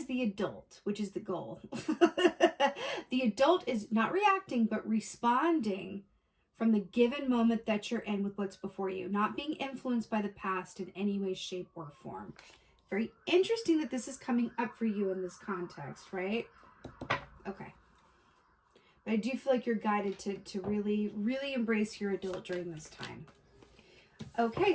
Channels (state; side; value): identical; both; correlation 1.00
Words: the adult, which is the goal. The adult is not reacting, but responding from the given moment that you're in with what's before you, not being influenced by the past in any way, shape, or form. Very interesting that this is coming up for you in this context, right? Okay. But I do feel like you're guided to really, really embrace your adult during this time. Okay,